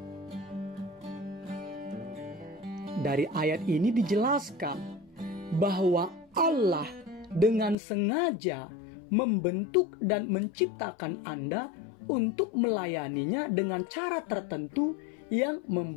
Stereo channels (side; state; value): right; drops out; at 7.8 s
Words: Dari ayat ini dijelaskan bahwa Allah dengan sengaja membentuk dan menciptakan Anda untuk melayaninya dengan cara tertentu yang